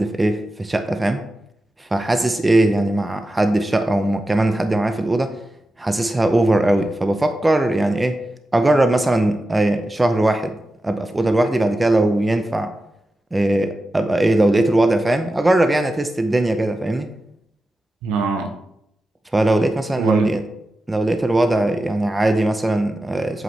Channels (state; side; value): normal; both; correlation 0.92